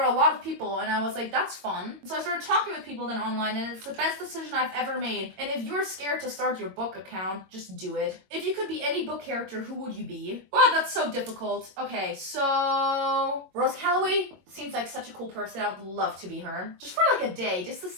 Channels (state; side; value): late; left; 22 ms